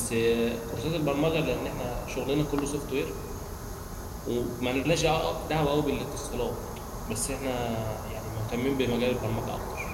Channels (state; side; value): identical; both; correlation 1.00